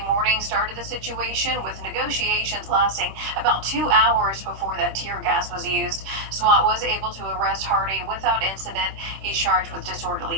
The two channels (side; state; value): left; late; 26 ms